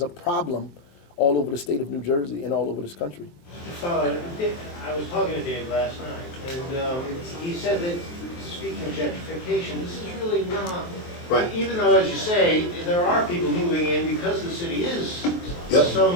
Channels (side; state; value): right; late; 23 ms